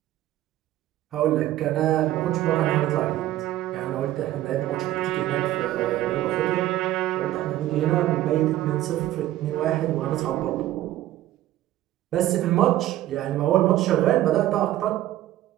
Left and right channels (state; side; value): quieter; left; 14.3 dB